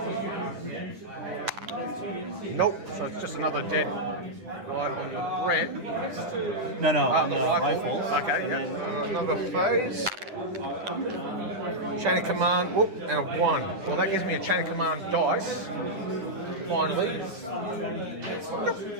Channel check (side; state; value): left; late; 9.6 ms